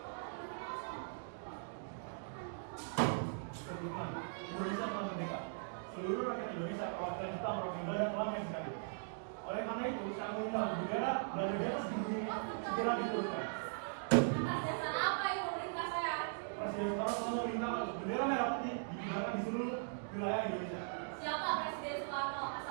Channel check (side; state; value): left; silent; digital silence